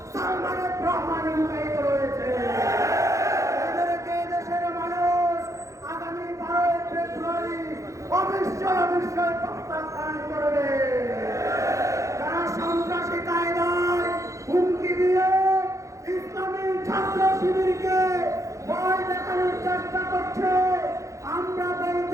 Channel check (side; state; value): left; late; 0.15 ms